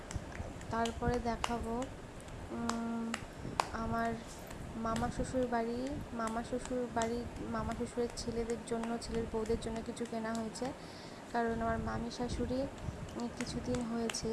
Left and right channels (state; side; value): identical; both; correlation 1.00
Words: তারপরে দেখাবো আমার মামা শ্বশুর শ্বশুরের ছেলেদের জন্য, ছেলের বউদের জন্য কিছু কেনা হয়েছে। কারণ আমার মামি শাশুড়ি কিছুদিন হয়েছে